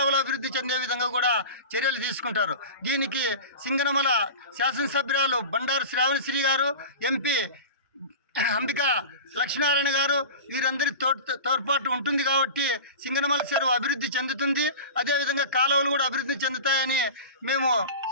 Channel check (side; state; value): both; inverted; correlation -0.32